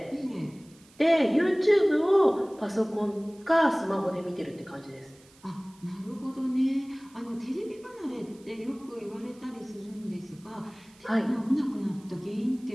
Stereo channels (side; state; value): right; noise; hiss, 27 dB below the sound